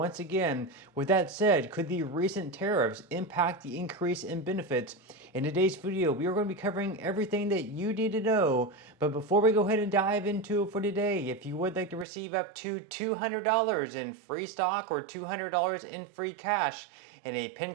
again. With that said, could the recent tariffs impact the increase in benefits? In today's video, we are going to be covering everything that you need to know. But before we go ahead and dive into it for today, if you would like to receive up to $200 in free stock or $200 in free cash, in a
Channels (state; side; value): drops out; left; at 12.1 s